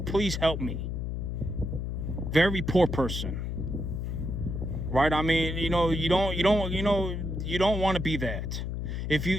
help me. Very poor person. Right? I mean, you don't want to be that.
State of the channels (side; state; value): left; noise; hum, 3 dB below the sound